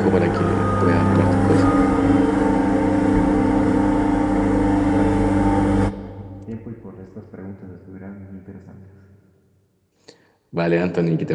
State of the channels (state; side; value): identical; both; correlation 1.00